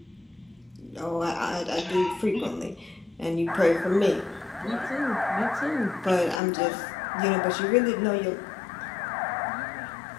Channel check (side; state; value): right; drops out; at 6.4 s